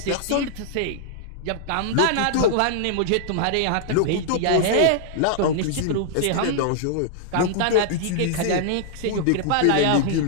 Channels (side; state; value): both; different; correlation -0.01